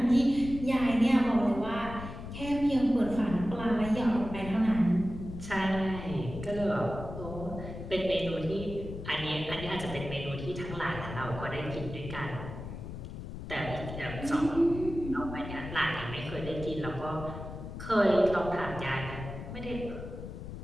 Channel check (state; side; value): noise; left; rumble, 9 dB below the sound